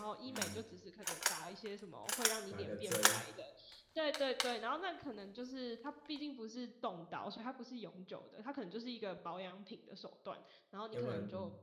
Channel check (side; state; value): both; identical; correlation 1.00